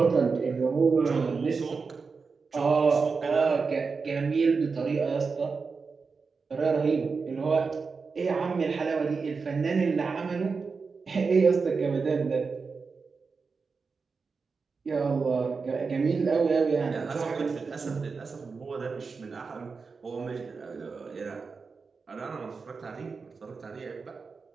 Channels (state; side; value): quieter; left; 4.8 dB